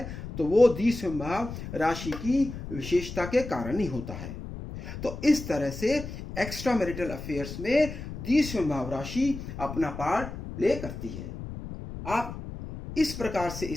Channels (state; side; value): noise; left; rumble, 9 dB below the sound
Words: तो वो द्विसंभाव राशि की विशेषता के कारण ही होता है। तो इस तरह से एक्स्ट्रा मैरिटल अफेयर्स में द्विसंभाव राशि अपना पार्ट प्ले करती है। आप इस प्रकार से